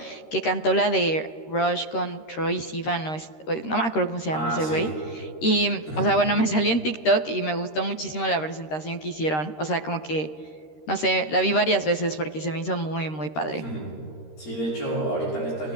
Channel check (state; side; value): late; right; 13 ms